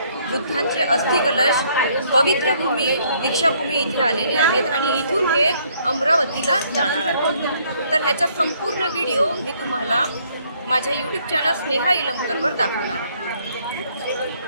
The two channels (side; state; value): both; inverted; correlation -0.66